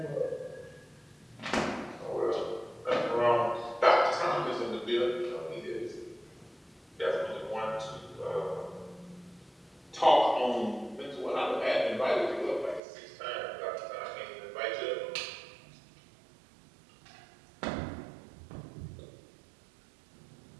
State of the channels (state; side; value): drops out; left; at 12.8 s